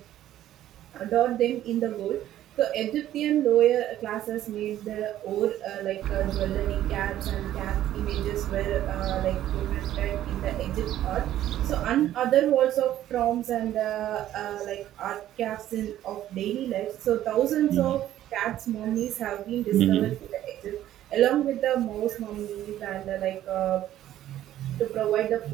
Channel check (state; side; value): quieter; left; 12.7 dB